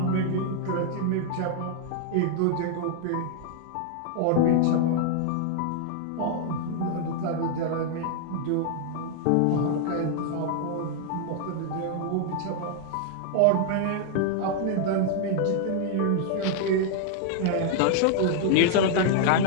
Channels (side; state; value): both; different; correlation 0.00